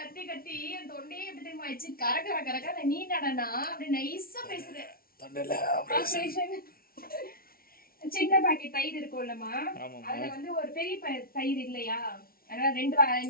கத்தி கத்தி என் தொண்டையே எப்படி தெரியுமா ஆயிடுச்சு? கரகர கரகர நீ நடனா அப்படி நைஸா பேசுறேன். சின்ன பாக்கெட் தயிர் இருக்கும்லமா, அதுல வந்து ஒரு பெரிய தயிர் இல்லையா, அதனால 2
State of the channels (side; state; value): right; late; 0.43 ms